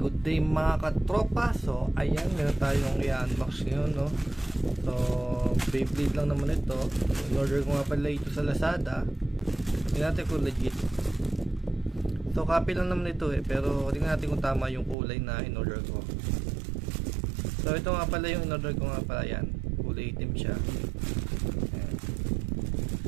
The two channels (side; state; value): left; drops out; at 15.0 s